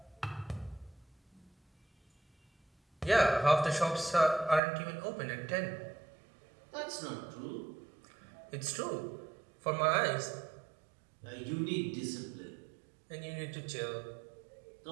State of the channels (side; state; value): left; drops out; at 4.6 s